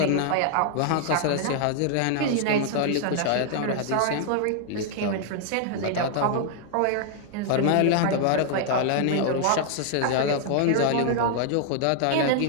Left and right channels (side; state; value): both; different; correlation 0.00